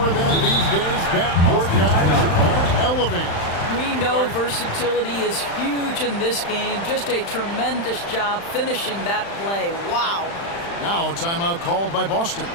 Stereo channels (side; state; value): right; late; 35 ms